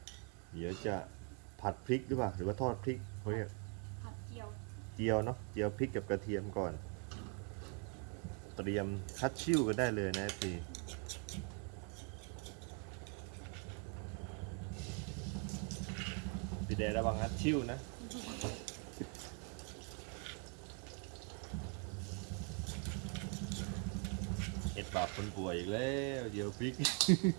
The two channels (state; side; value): quieter; left; 36.7 dB